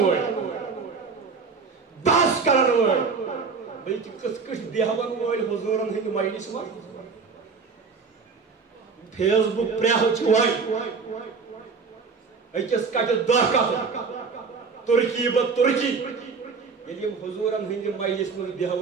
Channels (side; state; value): left; quieter; 5.0 dB